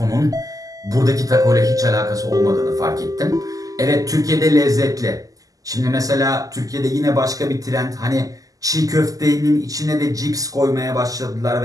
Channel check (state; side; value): late; left; 0.17 ms